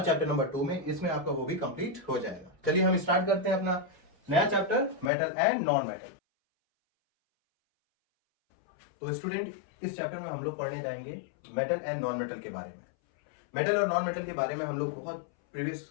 चैप्टर नंबर 2 में, इसमें आपका वो भी कंप्लीट हो जाएगा। चलिए हम स्टार्ट करते हैं अपना नया chapter, metal and non metal. तो स्टूडेंट, इस चैप्टर में हम लोग पढ़ने जाएंगे मेटल एंड नॉन मेटल के बारे में। मेटल और नॉन मेटल के बारे में हम लोग बहुत प्रीवियस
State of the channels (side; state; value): right; drops out; at 5.1 s